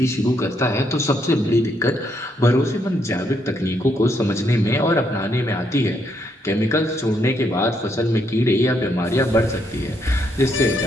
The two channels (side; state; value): both; normal; correlation 0.75